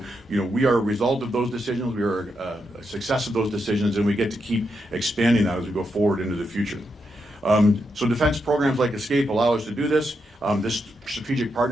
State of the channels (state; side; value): normal; both; correlation 0.83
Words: we are a result of those decisions, we are a success of those decisions, and we get to keep expanding that as we go forward into the future. So defense programs like ESCAPE allow us to do this. This strategic